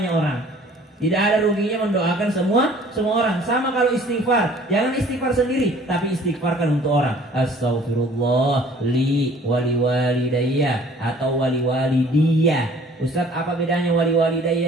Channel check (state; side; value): normal; both; correlation 0.52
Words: orang. Tidak ada ruginya mendoakan semua orang. Sama kalau istighfar, jangan istighfar sendiri, tapi istighfarkan untuk orang. Astaghfirullah li wali walidayya atau wali walidiyah. Ustaz, apa bedanya wali